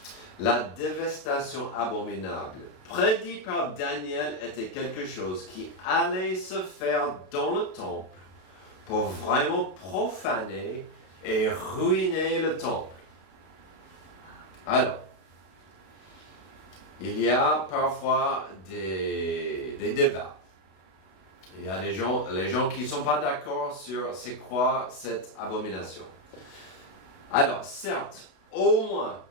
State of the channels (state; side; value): late; right; 32 ms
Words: La dévastation abominable prédite par Daniel était quelque chose qui allait se faire dans le temple pour vraiment profaner et ruiner le temple. Alors, il y a parfois des débats. Il y a les gens qui ne sont pas d'accord sur c'est quoi cette abomination. Alors, certes, au moins